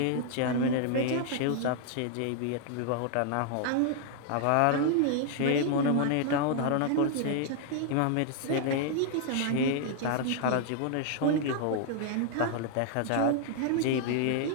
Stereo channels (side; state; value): both; different; correlation 0.00